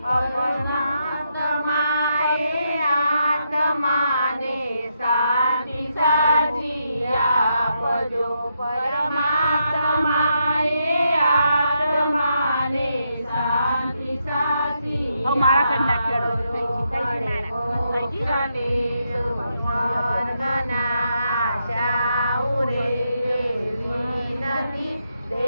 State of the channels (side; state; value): both; inverted; correlation -0.81